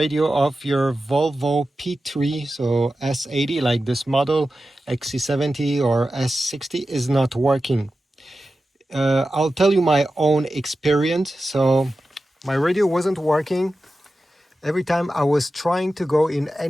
of your Volvo P3, so S80, like this model, XC70 or S60, is not working. I'll tell you my own experience. So my radio wasn't working. Every time I was trying to go in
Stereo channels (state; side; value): normal; both; correlation 0.93